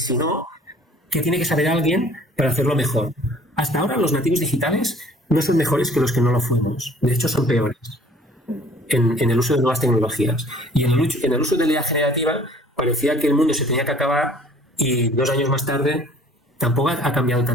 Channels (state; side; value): normal; both; correlation 0.53